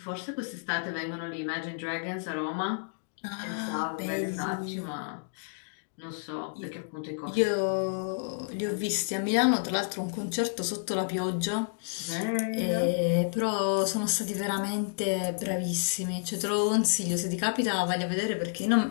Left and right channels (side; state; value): right; silent; digital silence